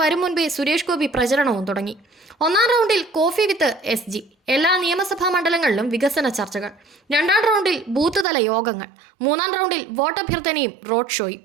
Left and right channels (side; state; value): left; drops out; at 8.2 s